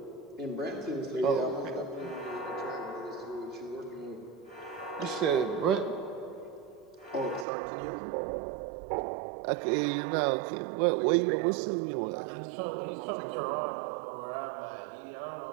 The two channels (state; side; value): drops out; left; at 7.5 s